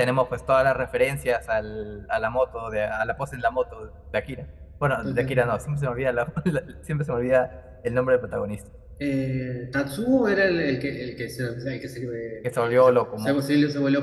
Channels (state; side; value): identical; both; correlation 1.00